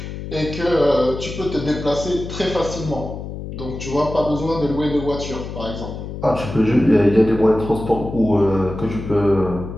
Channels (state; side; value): noise; left; hum, 9 dB below the sound